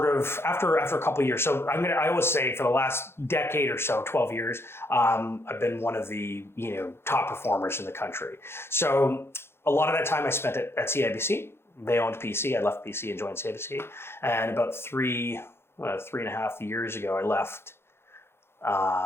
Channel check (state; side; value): late; right; 0.12 ms